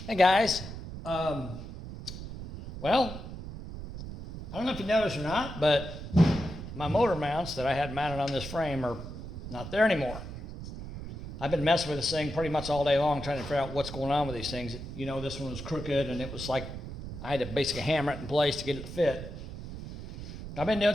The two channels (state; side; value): noise; right; rumble, 10 dB below the sound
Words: Hey guys, well, I don't know if you noticed or not, but my motor mounts that I had mounted on this frame are not there anymore. I've been messing with this thing pretty much all day long trying to figure out what's going on with these things. You know, this one was crooked and it was like I had to basically hammer it in place to get it to fit. I've been